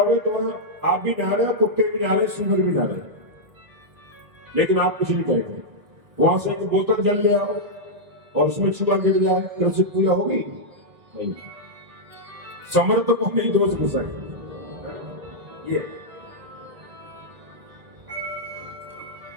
तो आप भी नहा रहे, कुत्ते भी नहा रहे, सुअर भी नहा रहे, लेकिन आप कुछ नहीं कहेंगे। वहां से एक बोतल जल ले आओ और उसमें चूहा गिर जाए, तो उससे पूजा होगी नहीं। समर्थकों ने दोष घुसाए। ये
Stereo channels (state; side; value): late; left; 1.5 ms